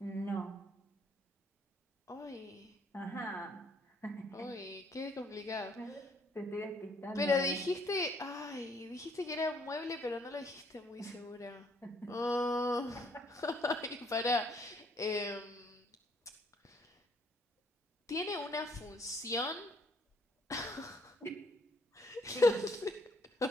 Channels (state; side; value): normal; both; correlation 0.66